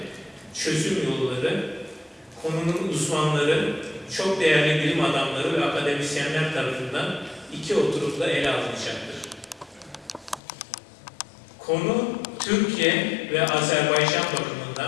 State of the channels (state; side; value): drops out; right; at 10.4 s